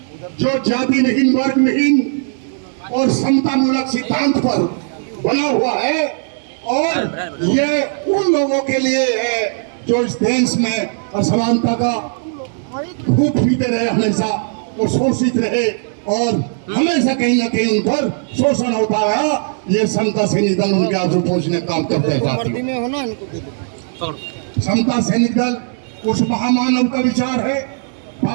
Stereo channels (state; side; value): silent; left; 68 dB below the other